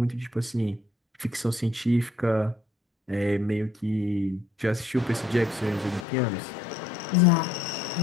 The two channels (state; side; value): drops out; right; at 6.1 s